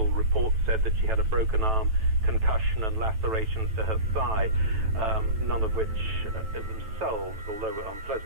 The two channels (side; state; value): left; late; 9.1 ms